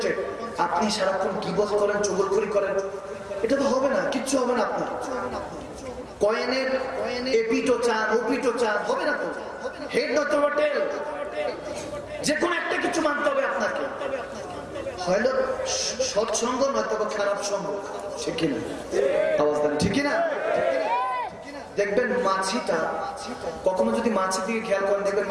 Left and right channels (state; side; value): identical; both; correlation 1.00